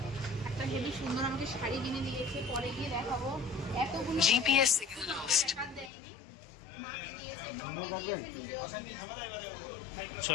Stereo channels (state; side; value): drops out; right; at 5.9 s